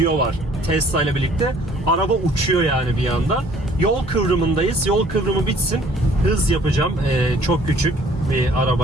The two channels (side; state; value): both; normal; correlation 0.57